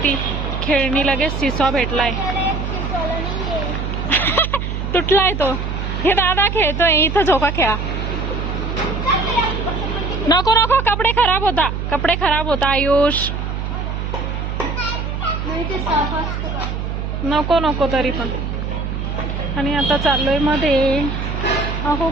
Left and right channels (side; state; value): right; noise; hum, 4 dB below the sound